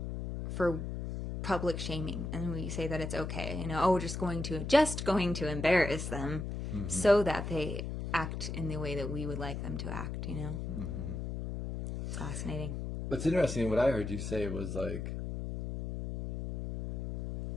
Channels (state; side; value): noise; left; hum, 5 dB below the sound